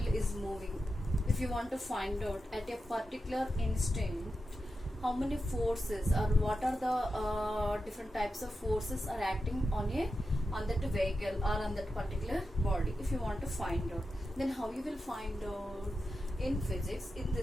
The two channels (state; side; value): normal; both; correlation 0.90